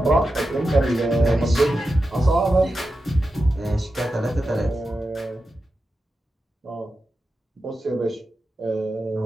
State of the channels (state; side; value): normal; both; correlation 0.90